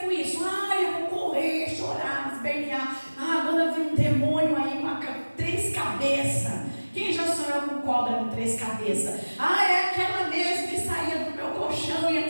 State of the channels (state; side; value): inverted; both; correlation -1.00